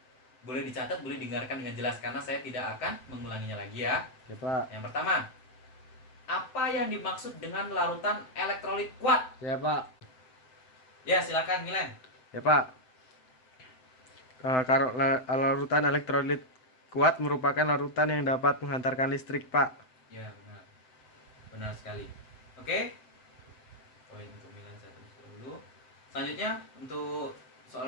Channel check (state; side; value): late; right; 7.8 ms